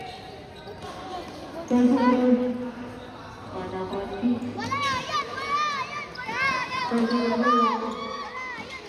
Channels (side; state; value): both; identical; correlation 1.00